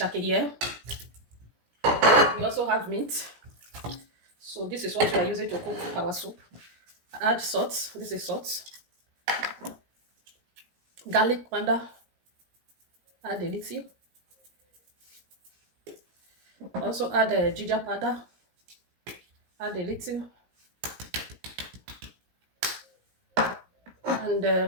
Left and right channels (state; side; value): late; left; 17 ms